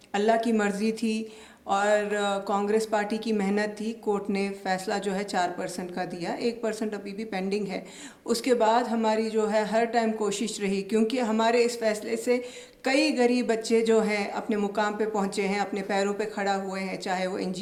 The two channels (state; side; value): identical; both; correlation 1.00